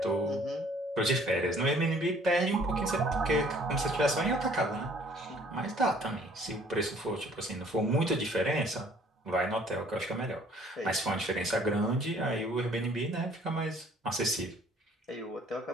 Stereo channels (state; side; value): normal; both; correlation 0.57